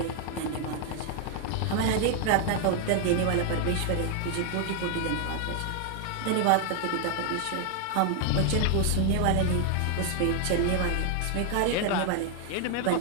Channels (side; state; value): both; different; correlation 0.00